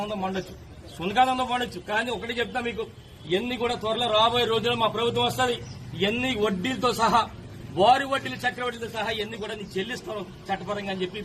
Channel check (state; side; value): identical; both; correlation 1.00